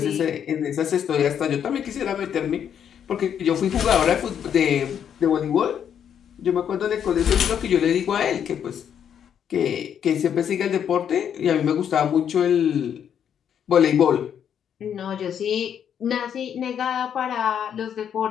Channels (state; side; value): quieter; right; 8.6 dB